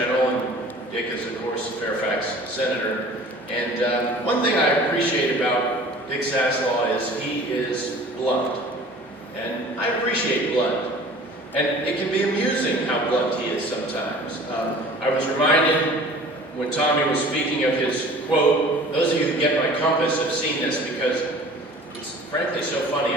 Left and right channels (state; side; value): normal; both; correlation 0.45